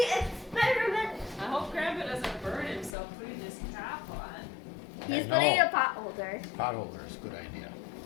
experiment. I hope Grandpa doesn't burn himself putting this cap on. He's I putting know. a pot holder. Pot holder is a good idea.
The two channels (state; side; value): drops out; right; at 3.0 s